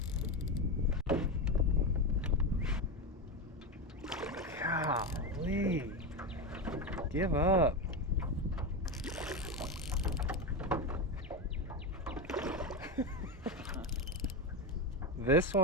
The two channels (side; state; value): both; normal; correlation 0.15